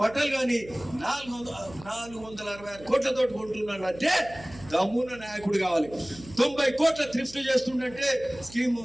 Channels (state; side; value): noise; right; hum, 19 dB below the sound